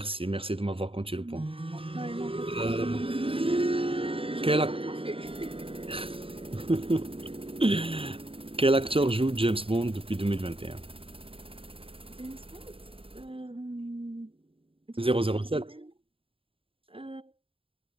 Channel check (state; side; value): late; left; 0.27 ms